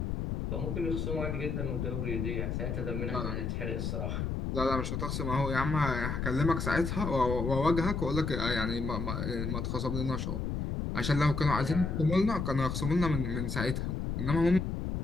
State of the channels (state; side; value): noise; left; rumble, 2 dB below the sound